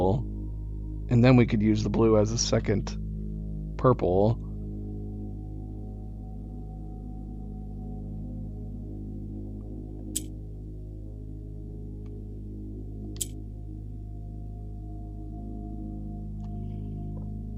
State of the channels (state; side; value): identical; both; correlation 1.00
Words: and then we could use the blue as a second purple.